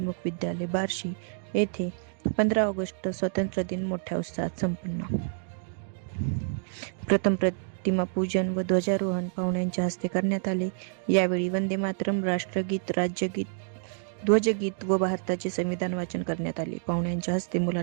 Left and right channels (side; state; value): left; silent; digital silence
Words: विद्यालय बार्शी येथे 15 ऑगस्ट स्वातंत्र्य दिन मोठ्या उत्साहात संपन्न. प्रथम प्रतिमा पूजन व ध्वजारोहण पाहुण्यांच्या हस्ते करण्यात आले. यावेळी वंदे मातरम, राष्ट्रगीत, राज्यगीत, ध्वजगीत व भारताचे संविधान वाचन करण्यात आले. पाहुण्यांच्या हस्ते